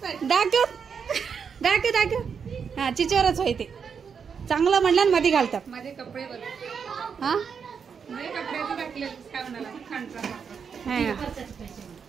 दाखव दाखव दाखव। हा चिचोरच होय ते चांगलं म्हणलं ना मध्ये घालतात माझे कपडे बघ। हा माझे कपड्याचं टाकले काय म्हणाला खांडचा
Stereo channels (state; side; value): quieter; left; 6.5 dB